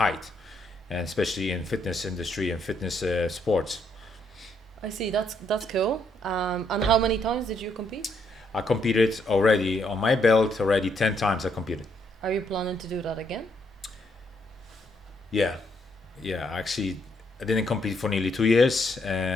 and especially in fitness industry and fitness sports. I see. That's cool. And how many times did you compete? I competed already on my belt already 10 times. I competed. Are you planning to do that again? Yeah. Actually, I didn't compete for nearly 2 years,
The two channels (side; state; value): both; normal; correlation 0.73